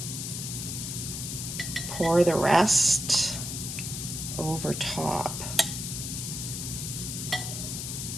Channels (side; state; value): left; noise; hiss, 5 dB below the sound